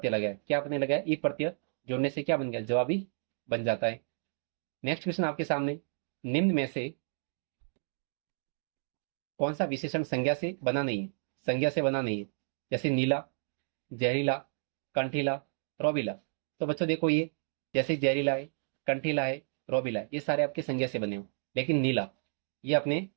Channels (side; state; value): left; silent; digital silence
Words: लगाया, क्या आपने लगाया? ई प्रत्यय जोड़ने से क्या बन गया? जवाबी बन जाता है। नेक्स्ट क्वेश्चन आपके सामने, निम्न में से कौन सा विशेषण संज्ञा से बना नहीं है? संज्ञा से बना नहीं है। जैसे नीला, जहरीला, कंठीला, रोबीला। तो बच्चों देखो, ये जैसे जहरीला है, कंठीला है, रोबीला है, ये सारे आपके संज्ञा से बने हो। लेकिन नीला, ये अपने